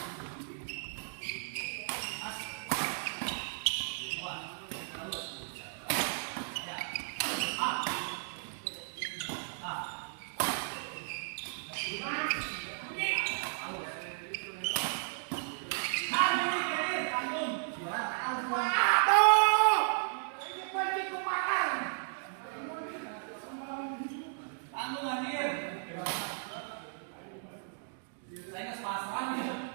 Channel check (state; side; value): silent; left; digital silence